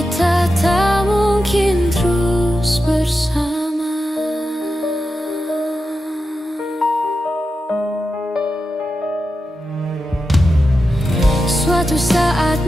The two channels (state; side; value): normal; both; correlation 0.90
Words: tak mungkin terus bersama. Suatu saat